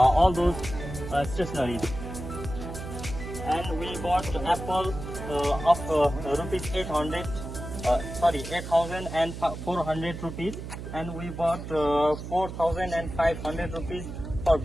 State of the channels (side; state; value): right; noise; hum, 9 dB below the sound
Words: those stationeries. And we bought apple of rupees 8,400 rupees, and we bought 4,500 rupees for